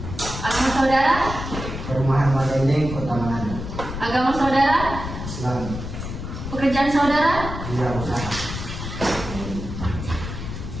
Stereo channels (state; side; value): noise; left; rumble, 7 dB below the sound